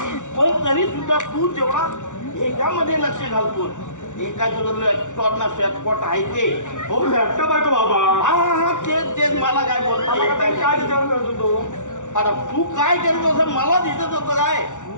पण तरी सुद्धा तू जेवढा ह्याच्यामध्ये लक्ष घालतो एका लॅपटॉप ना शॉर्टकट आहे ते. हो लॅपटॉप आहे तो बाबा. हा हा हा तेच तेच मला काय बोलतो काय विचार करतो तो? आता तू काय करत असं मला दिसत होतं काय?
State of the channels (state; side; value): late; right; 0.86 ms